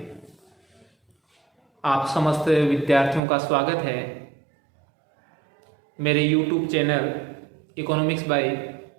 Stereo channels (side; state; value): left; drops out; at 3.2 s